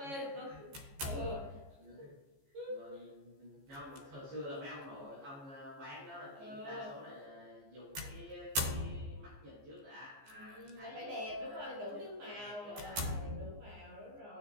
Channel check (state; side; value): late; left; 14 ms